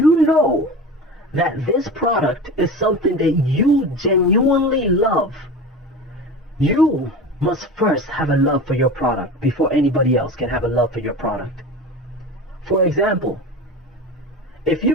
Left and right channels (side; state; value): both; normal; correlation 0.31